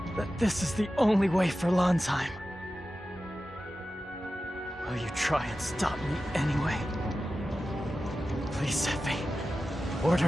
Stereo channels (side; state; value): both; normal; correlation 0.93